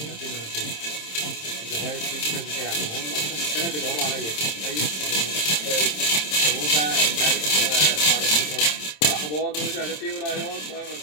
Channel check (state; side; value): late; right; 27 ms